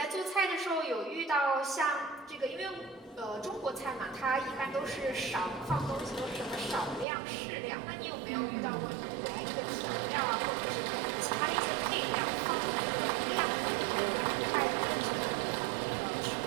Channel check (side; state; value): left; drops out; at 7.1 s